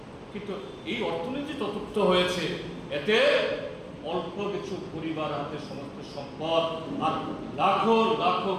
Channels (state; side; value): identical; both; correlation 1.00